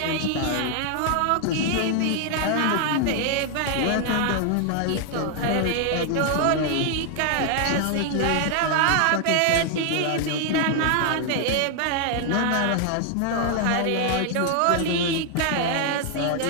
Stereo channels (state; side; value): different; both; correlation 0.00